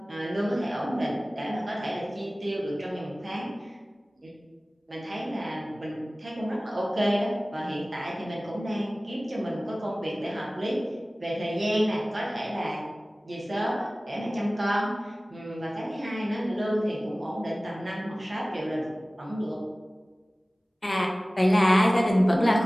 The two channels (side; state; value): both; normal; correlation 0.98